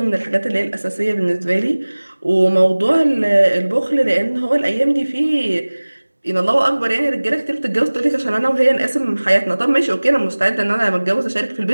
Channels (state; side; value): inverted; both; correlation -1.00